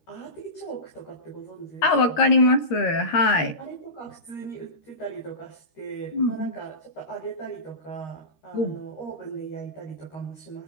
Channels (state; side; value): late; right; 13 ms